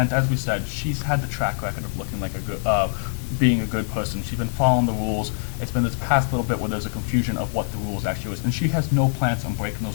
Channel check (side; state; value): right; silent; digital silence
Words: As we said, she's had the track record of looking like a good, being a good person. She's been following the rules. It's been this past little bit where there's a confusion of what the rules actually is, and she has no plans on breaking